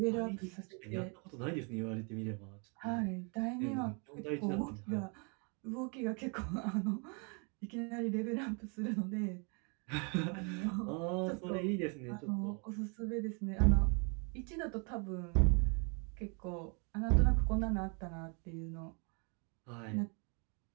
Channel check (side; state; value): left; quieter; 35.4 dB